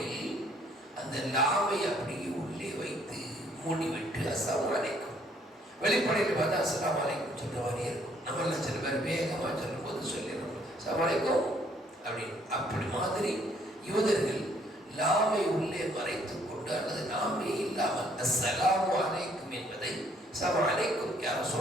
அந்த லாமை அப்படியே உள்ளே வைத்து மூடிவிட்டு அஸ்ஸலாமு அலைக்கும், வெளிப்படையில் பார்த்தா அஸ்ஸலாமு அலைக்கும் சொல்ற மாதிரியே இருக்கும். நம்மள சில பேர் வேகமாக சொல்லும் போது சொல்லிடுறோம் அஸ்ஸலாமு அலைக்கும் அப்படின்னு. அப்படி மாதிரி யூதர்கள் லாமை உள்ளே மறைத்துக் கொண்டு அல்லது லாமே இல்லாமல் அஸ்ஸலாமு அலைக்கும் என்பதை அஸ்ஸலாமு அலைக்கும் யார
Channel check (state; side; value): normal; both; correlation 0.65